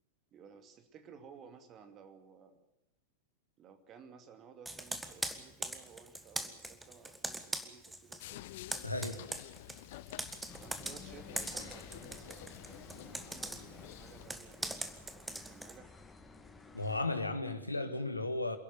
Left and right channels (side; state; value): both; normal; correlation -0.01